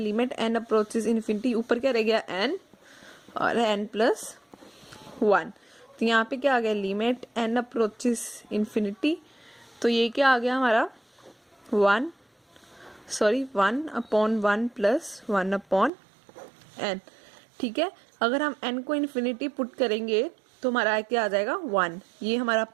n अप्रोचेस इन्फिनिटी, ऊपर क्या रह गया n और n+1, तो यहाँ पे क्या आ गया लिमिट n अप्रोचेस इन्फिनिटी, तो ये क्या आ गया हमारा 1/1 + 1/n। ठीक है, अगर हम n को इन्फिनिटी पुट करेंगे तो हमारा क्या आ जाएगा 1, ये हमारा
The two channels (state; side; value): drops out; left; at 15.9 s